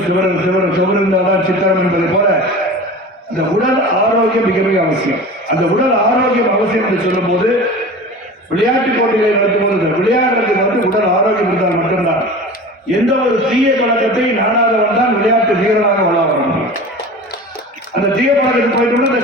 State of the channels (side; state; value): both; normal; correlation 0.35